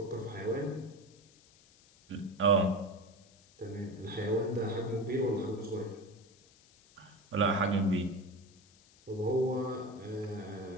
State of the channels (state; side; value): noise; left; hiss, 27 dB below the sound